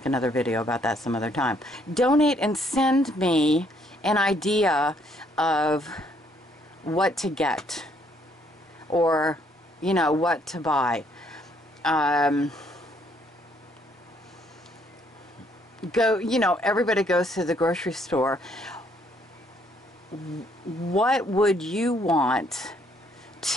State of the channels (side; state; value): both; normal; correlation 0.68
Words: another video about that some other time. Donate and send me an idea of what to get. Or, you know, what to buy. You know, everybody goes to the grocery store. What would you want